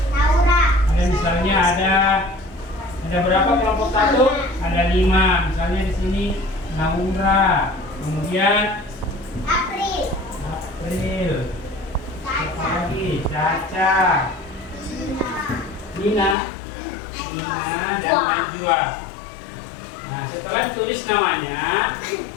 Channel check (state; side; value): drops out; right; at 16.4 s